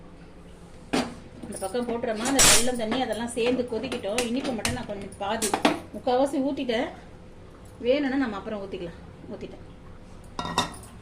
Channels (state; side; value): identical; both; correlation 1.00